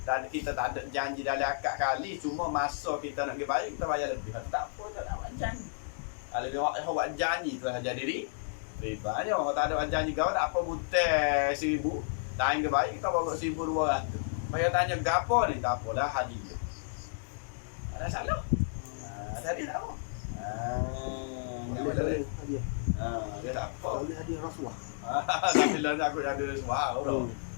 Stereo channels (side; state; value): right; silent; digital silence